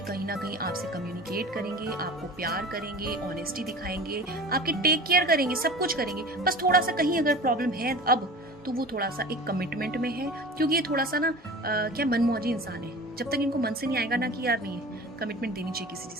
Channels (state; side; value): normal; both; correlation 0.37